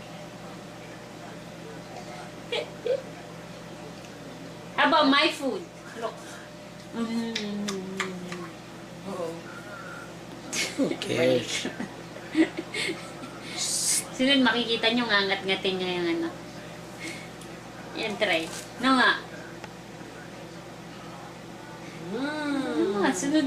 How about my food? Look. Who cares? Sunod makikita nyo ngangat-ngatin nyo yung ano. Yan, try. No nga.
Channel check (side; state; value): both; identical; correlation 1.00